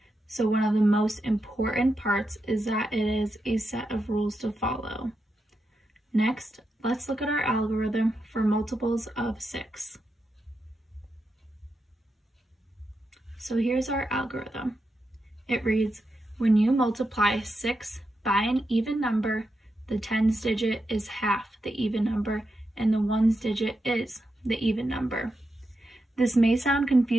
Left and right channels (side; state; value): both; normal; correlation 0.86